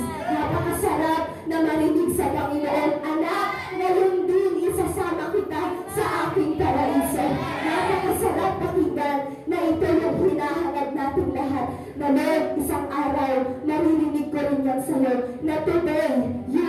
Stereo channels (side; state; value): both; identical; correlation 1.00